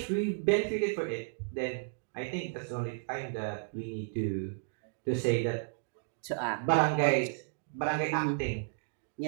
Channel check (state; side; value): silent; left; digital silence